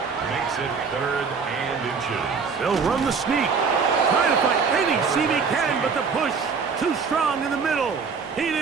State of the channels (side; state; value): left; quieter; 5.4 dB